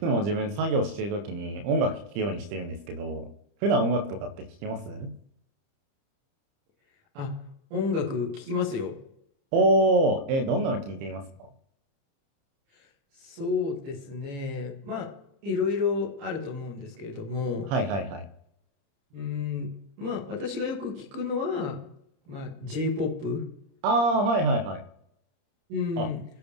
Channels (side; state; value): left; late; 30 ms